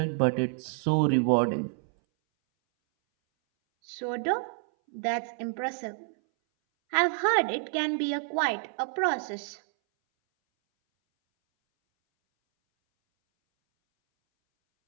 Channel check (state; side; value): silent; left; 59 dB below the other